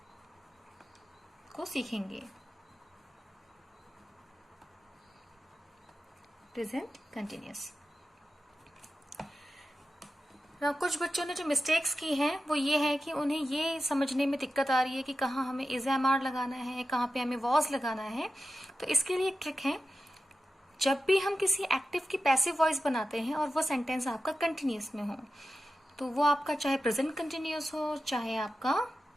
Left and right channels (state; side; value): normal; both; correlation 0.92